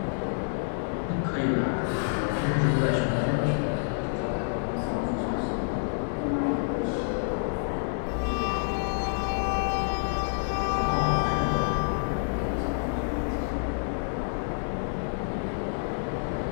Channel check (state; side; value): silent; right; digital silence